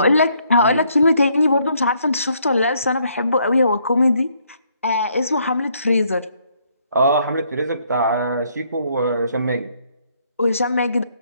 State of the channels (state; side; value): inverted; both; correlation -0.69